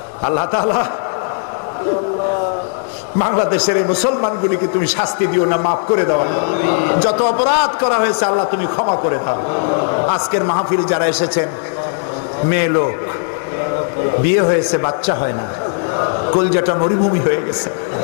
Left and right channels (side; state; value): right; silent; digital silence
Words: আল্লাহ তাআলা, বাংলাদেশের এই মুসলমানগুলিকে তুমি শাস্তি দিও না, মাফ করে দাও। যত অপরাধ করা হয়েছে আল্লাহ তুমি ক্ষমা করে দাও। আজকের মাহফিল যারা এসেছেন, মেয়ে লোক, বিয়ে হয়েছে, বাচ্চা হয় না, কলজাটা মরুভূমি হয়ে গেছে।